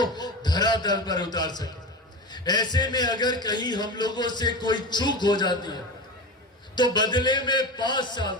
धरातल पर उतार सके। ऐसे में अगर कहीं हम लोगों से कोई चूक हो जाती है तो बदले में 5 साल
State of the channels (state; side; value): normal; both; correlation 0.27